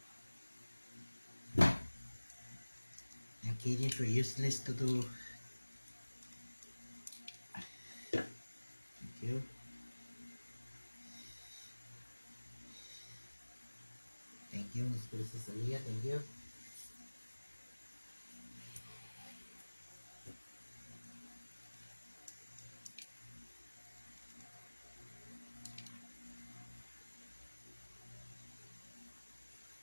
Ang KJ for useless to do. Thank you. Thank you, Miss Princess Aliyah. Thank you.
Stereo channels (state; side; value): inverted; both; correlation -1.00